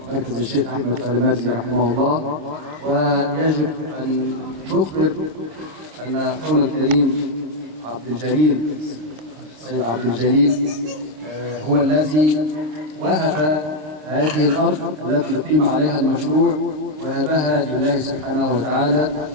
مركز الشيخ أحمد فالمرزي رحمه الله. ويجب أن نخبر أن أخونا الكريم عبد الجليل السيد عبد الجليل هو الذي وهب هذه الأرض التي يقيم عليها المشروع، وهبها لله سبحانه وتعالى.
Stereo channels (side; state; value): left; late; 26 ms